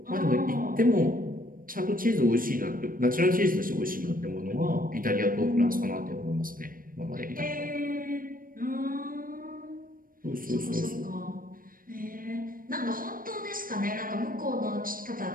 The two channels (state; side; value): late; left; 0.41 ms